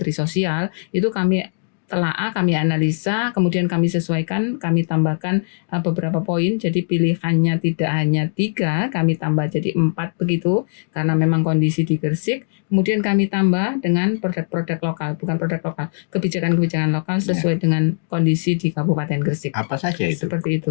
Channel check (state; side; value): silent; right; digital silence